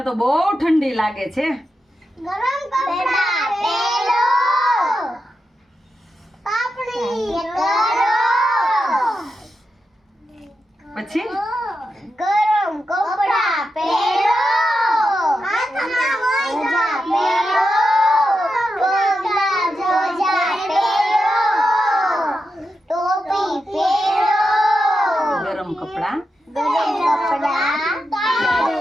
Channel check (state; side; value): normal; both; correlation 0.88